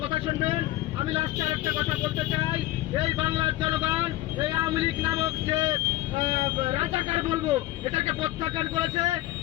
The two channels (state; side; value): quieter; right; 16.6 dB